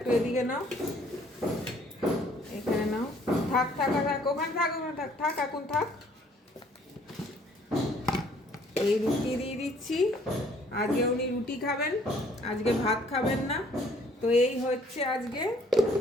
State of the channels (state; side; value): normal; both; correlation 0.60